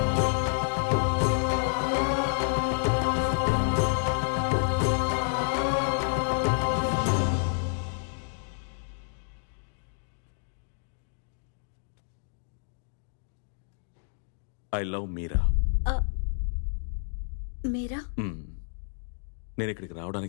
ఐ లవ్ మీరా. మీరా? నేను ఇక్కడికి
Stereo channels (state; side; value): silent; right; digital silence